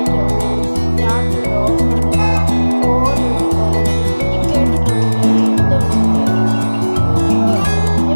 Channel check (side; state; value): both; inverted; correlation -1.00